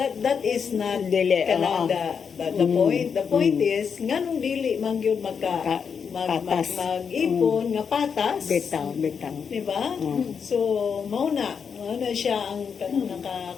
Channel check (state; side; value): quieter; right; 6.5 dB